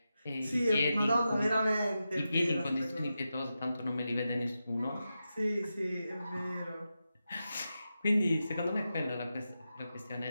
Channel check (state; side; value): inverted; both; correlation -0.90